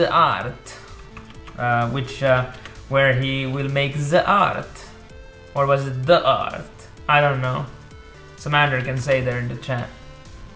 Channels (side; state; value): both; identical; correlation 1.00